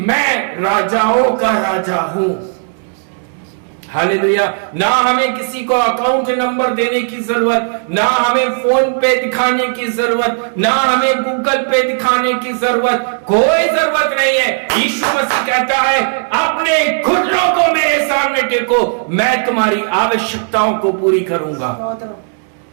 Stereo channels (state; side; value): silent; left; digital silence